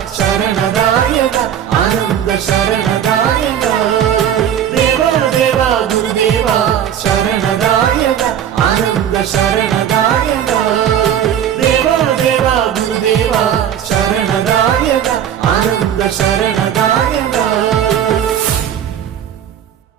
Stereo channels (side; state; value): left; quieter; 9.6 dB